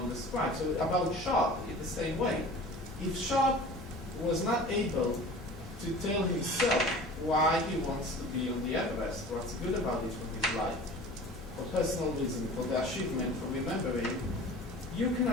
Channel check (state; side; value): normal; both; correlation 0.41